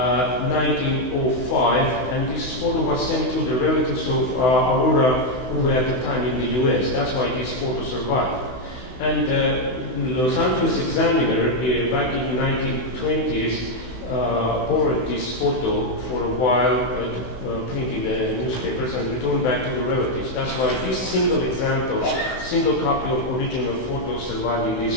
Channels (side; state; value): right; late; 16 ms